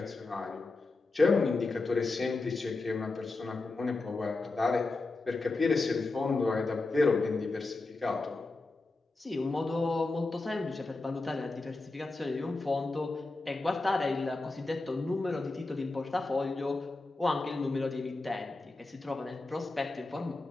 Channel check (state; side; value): quieter; right; 3.4 dB